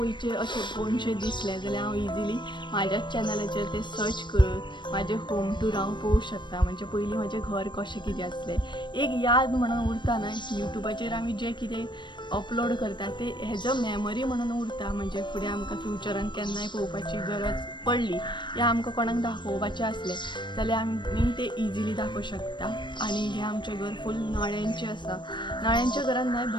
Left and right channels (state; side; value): late; right; 0.22 ms